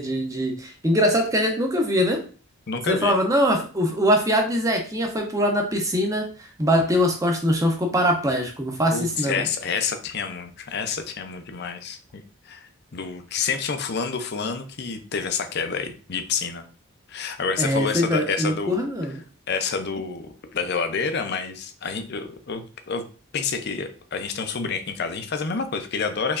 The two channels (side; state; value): both; normal; correlation 0.33